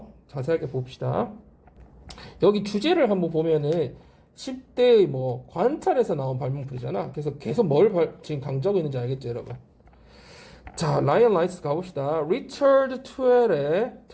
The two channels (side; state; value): both; identical; correlation 1.00